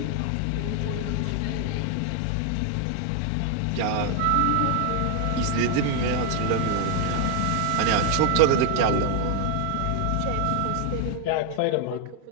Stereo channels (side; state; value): both; different; correlation 0.00